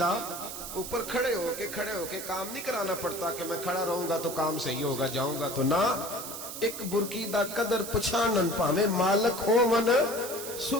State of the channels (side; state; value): right; noise; hiss, 8 dB below the sound